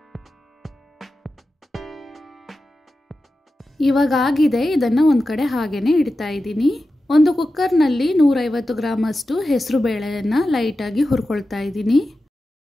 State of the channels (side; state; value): both; normal; correlation 0.92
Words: ಇವಾಗ ಆಗಿದೆ, ಇದನ್ನು ಒಂದು ಕಡೆ ಹಾಗೇನೆ ಇಡ್ತಾ ಇದ್ದೀನಿ. ಒಂದು ಕುಕ್ಕರ್ನಲ್ಲಿ 150 ಗ್ರಾಮ್ ಅಷ್ಟು ಹೆಸರು ಬೇಳೆಯನ್ನು ಲೈಟಾಗಿ ಹುರ್ಕೊಳ್ತಾ ಇದ್ದೀನಿ.